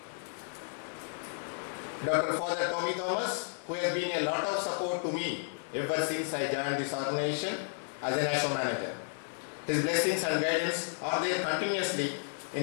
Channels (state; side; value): silent; right; digital silence